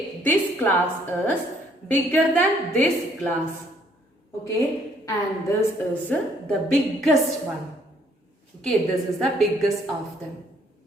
this glass is bigger than this glass. Okay, and this is the biggest one. Okay, this is the biggest of them.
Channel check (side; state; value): both; normal; correlation 0.64